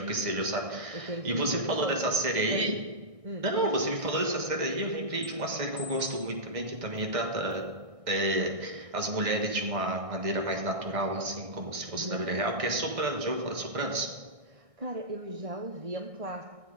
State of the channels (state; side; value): late; left; 1.6 ms